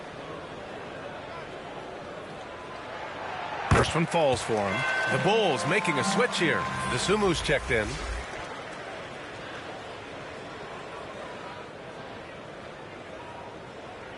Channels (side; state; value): both; identical; correlation 1.00